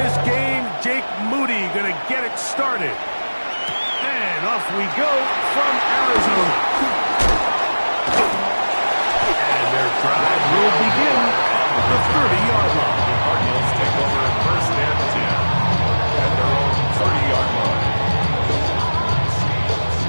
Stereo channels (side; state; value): both; inverted; correlation -1.00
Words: game. Jake Moody going to get it started. And off we go from Arizona. And their drive will begin at the 30-yard line. The Cardinals take over first and 10 at their own 30-yard line.